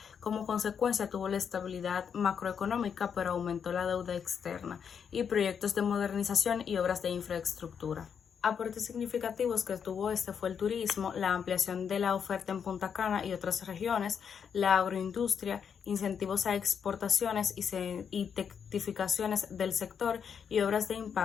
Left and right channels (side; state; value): right; quieter; 7.2 dB